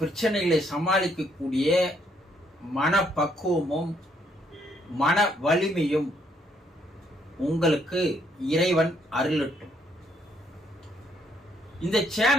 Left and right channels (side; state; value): both; normal; correlation 0.70